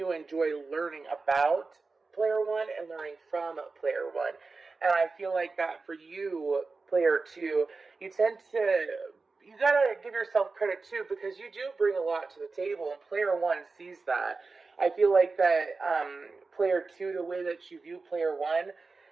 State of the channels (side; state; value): left; quieter; 4.0 dB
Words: enjoy learning about player one and learning from player one. And I feel like that for you, player two, you tend to, you gotta give yourself credit too, because you do bring a lot to the table, and player one sees that. I feel like that player two, the way that you view player one